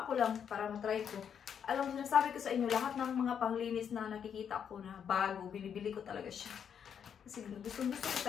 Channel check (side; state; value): right; quieter; 7.9 dB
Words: ko lang para matry ko. Alam mo, sinasabi ko sa inyo, lahat ng mga panglinis na nakikita ko na bago, binibili ko talaga siya. Kasi gusto ko